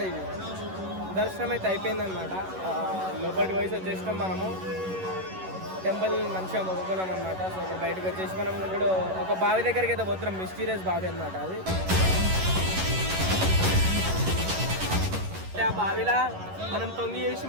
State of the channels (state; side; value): late; left; 11 ms